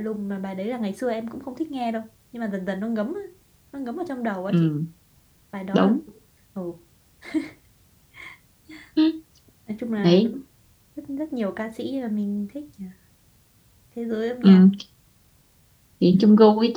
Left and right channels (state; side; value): identical; both; correlation 1.00